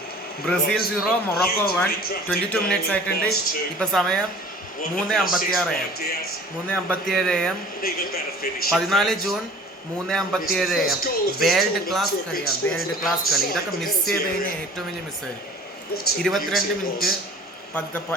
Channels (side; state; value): both; normal; correlation 0.46